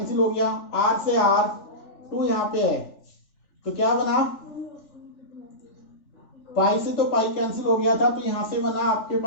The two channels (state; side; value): late; right; 3.4 ms